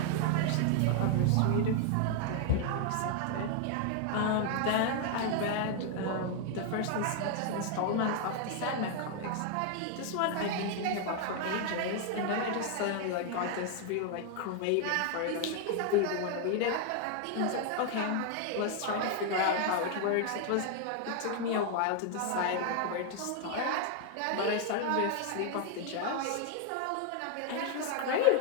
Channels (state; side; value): different; both; correlation 0.00